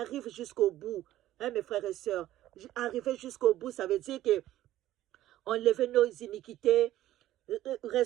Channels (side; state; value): left; quieter; 14.0 dB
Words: jusqu'au bout. Hein, mes frères et sœurs, arriver jusqu'au bout, ça veut dire que enlever nos iniquités,